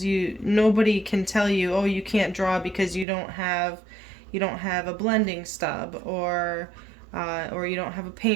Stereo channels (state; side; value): drops out; left; at 3.1 s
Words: Nobody can tell you, oh, you can't draw because you don't have a blending stub, or you don't have a